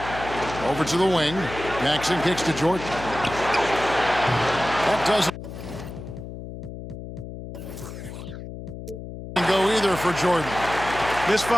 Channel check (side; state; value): left; noise; hum, 11 dB below the sound